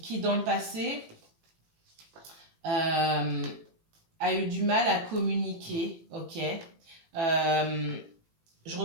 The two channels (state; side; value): late; left; 18 ms